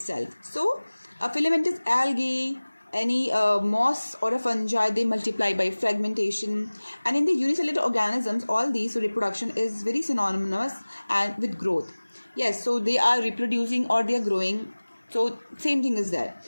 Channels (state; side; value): inverted; both; correlation -1.00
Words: So a filamentous algae, any moss or a fungi, they multiply by fragmentation. And in the unicellular organisms, all these, so reproduction is very synonymous and with growth. Yes, so they are reproducing or they are growing, so same thing is there.